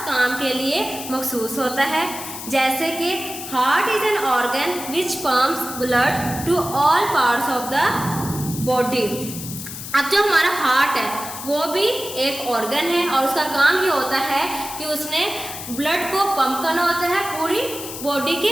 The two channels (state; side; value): noise; left; hiss, 9 dB below the sound